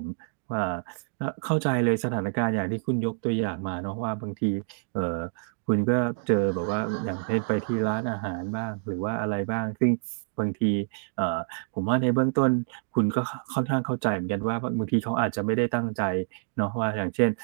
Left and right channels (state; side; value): silent; left; digital silence